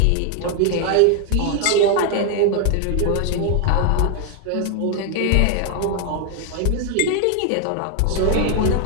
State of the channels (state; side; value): different; both; correlation 0.00